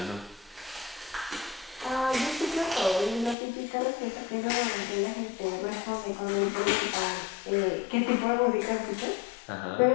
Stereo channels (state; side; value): drops out; right; at 3.4 s